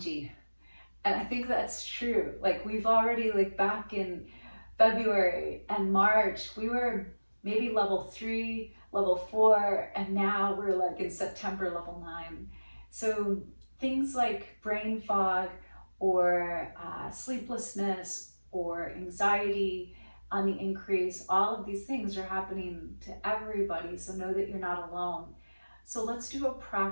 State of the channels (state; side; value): inverted; both; correlation -1.00